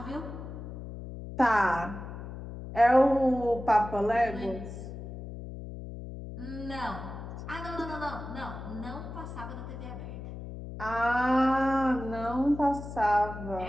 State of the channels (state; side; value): noise; left; hum, 10 dB below the sound